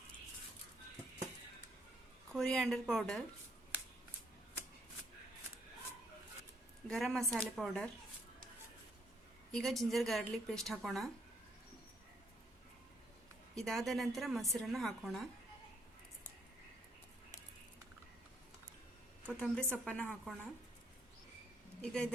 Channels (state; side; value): normal; both; correlation 0.70